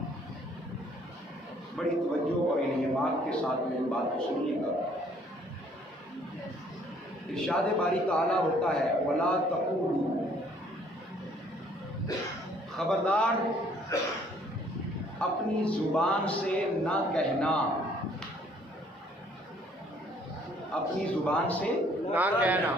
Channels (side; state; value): both; normal; correlation 0.61